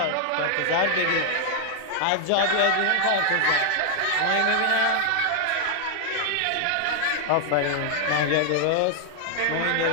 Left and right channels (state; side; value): different; both; correlation 0.00